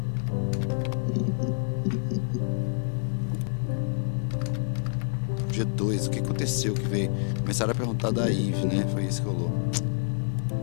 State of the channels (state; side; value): silent; right; digital silence